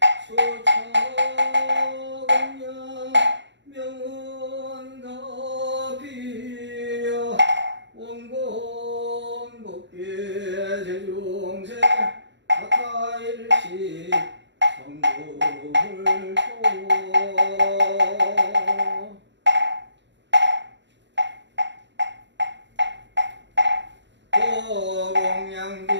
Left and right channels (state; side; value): late; left; 0.52 ms